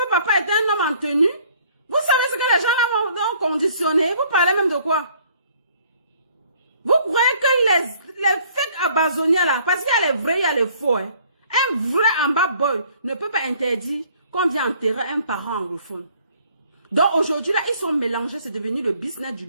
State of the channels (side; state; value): both; inverted; correlation -0.59